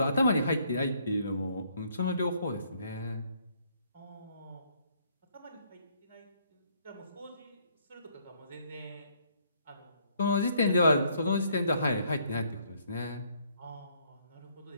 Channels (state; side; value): inverted; both; correlation -0.67